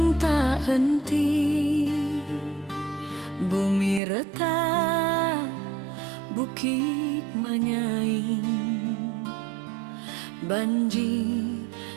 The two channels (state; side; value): drops out; left; at 4.0 s